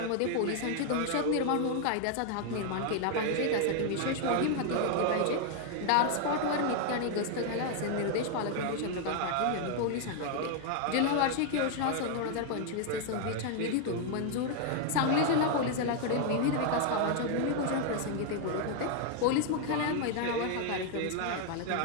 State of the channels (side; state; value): both; different; correlation 0.00